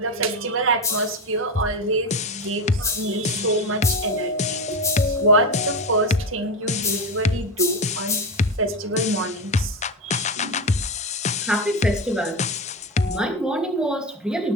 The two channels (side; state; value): both; normal; correlation 0.18